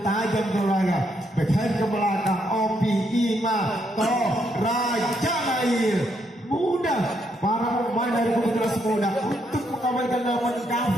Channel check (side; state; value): both; normal; correlation 0.76